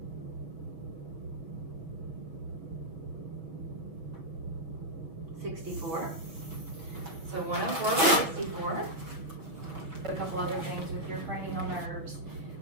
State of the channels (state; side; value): late; left; 6.1 ms